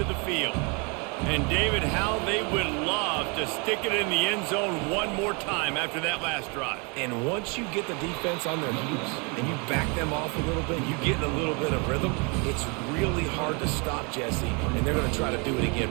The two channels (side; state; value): left; quieter; 32.2 dB